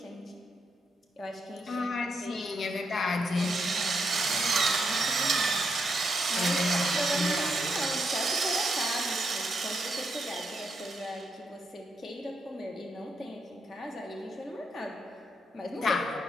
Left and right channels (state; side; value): normal; both; correlation 0.80